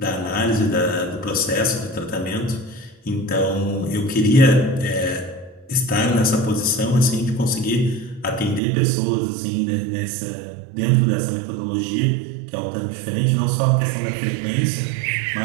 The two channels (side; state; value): left; drops out; at 8.6 s